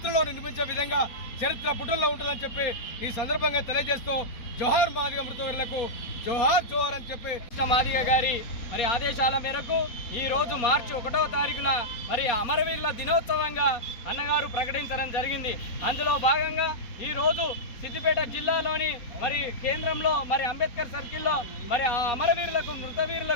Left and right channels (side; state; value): right; late; 4.2 ms